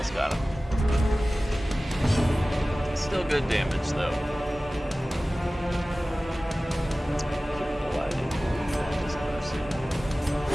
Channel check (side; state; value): both; normal; correlation 0.97